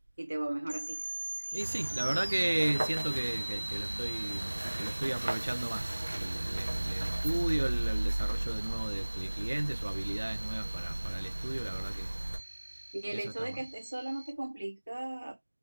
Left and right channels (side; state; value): both; inverted; correlation -1.00